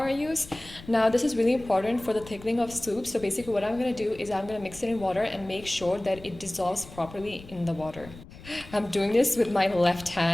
I use. Now this is really important for the thickening of soup. So basically what I'm going to do is I'm going to mix it in water and make sure that it dissolves properly in the water. I'm doing this with my left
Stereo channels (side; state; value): left; noise; rumble, 18 dB below the sound